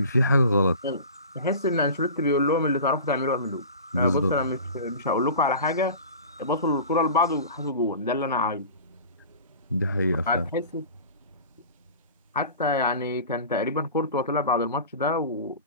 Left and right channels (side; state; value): both; inverted; correlation -0.38